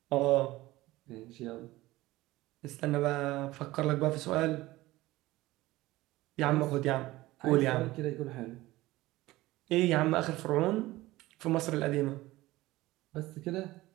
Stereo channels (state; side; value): quieter; left; 18.2 dB